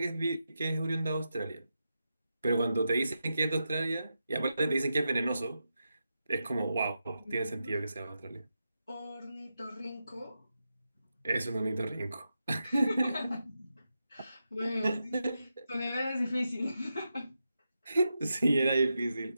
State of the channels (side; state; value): both; inverted; correlation -0.87